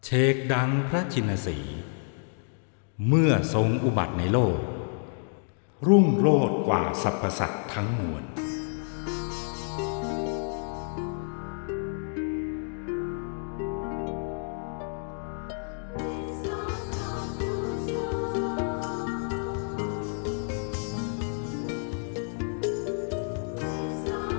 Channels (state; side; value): silent; right; 59 dB below the other